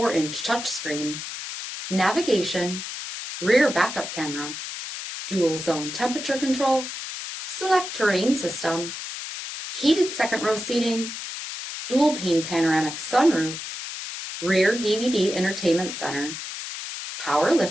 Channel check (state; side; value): noise; left; hiss, 8 dB below the sound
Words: touchscreen, navigation, rear backup camera, dual zone temperature control, SELEC-TERRAIN system, heated second row seating, dual pane panoramic sunroof, rear DVD entertainment center, power